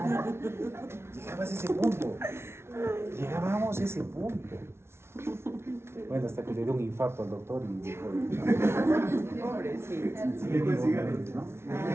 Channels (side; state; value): left; late; 0.12 ms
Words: a ese punto. Llegábamos a ese punto. Bueno, hasta que le dio un infarto al doctor y dijo. Pobrecito. ¿No?